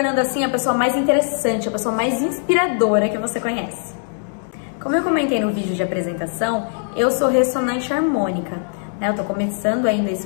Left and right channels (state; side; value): silent; right; digital silence